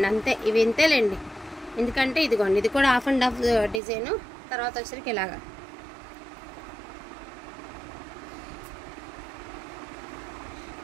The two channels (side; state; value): left; drops out; at 3.8 s